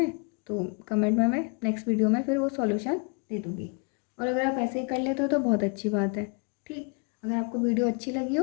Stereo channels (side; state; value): right; quieter; 36.5 dB